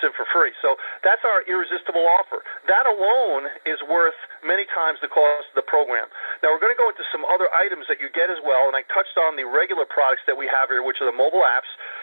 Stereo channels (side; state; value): both; inverted; correlation -1.00